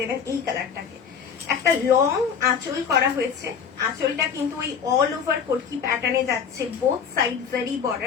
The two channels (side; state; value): right; quieter; 6.9 dB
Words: এই কালারটাকে। একটা লং আঁচল করা হয়েছে, আঁচলটা কিন্তু ওই অল ওভার কোটকি প্যাটার্নে যাচ্ছে, বোথ সাইড জারি